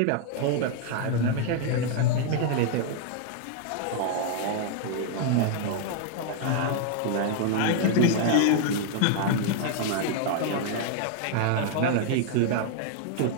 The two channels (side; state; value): both; different; correlation 0.00